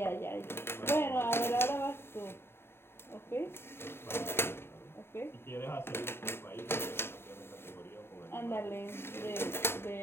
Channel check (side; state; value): right; late; 0.11 ms